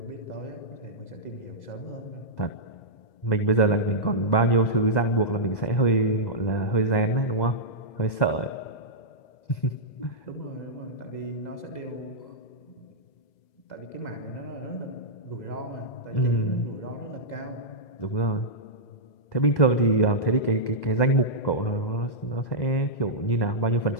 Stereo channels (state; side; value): late; right; 2.0 ms